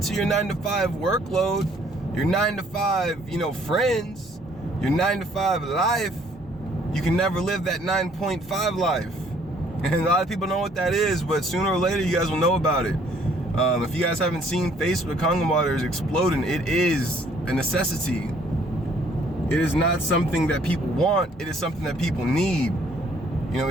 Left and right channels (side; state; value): both; normal; correlation 0.62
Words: to your 9-to-5 workload, your 9-to-5, friends, your 9-to-5 life, you can never live that 9.5 life. And a lot of people know what that is, but sooner or later you guys will know about it. If you guys haven't seen Facebook Kangen waters exploding, it is a necessity. It is not something that people want. It is something that people need.